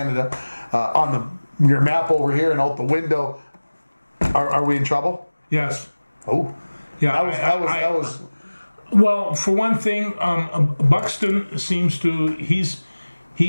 on your map over here and out the window. Are we in trouble? Yes. Oh, yeah. That was. Well, for one thing, Buxton seems to he's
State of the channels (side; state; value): both; inverted; correlation -1.00